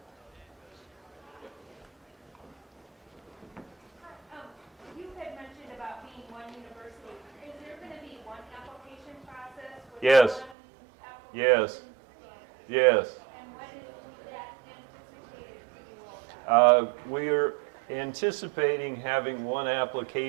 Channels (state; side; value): drops out; left; at 10.6 s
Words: You had mentioned about being one university. Is there going to be one application process? With Yes. one application Yes. standard? Yes. And when is that anticipated to be rolled out? We're anticipating having one